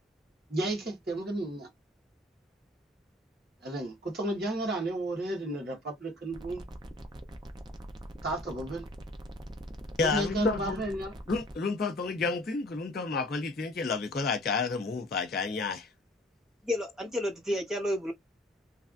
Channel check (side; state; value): both; normal; correlation 0.53